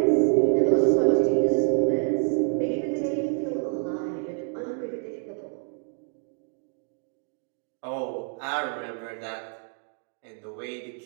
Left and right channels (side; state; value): left; silent; 60 dB below the other